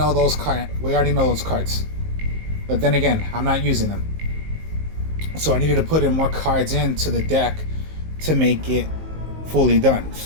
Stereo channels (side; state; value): left; late; 19 ms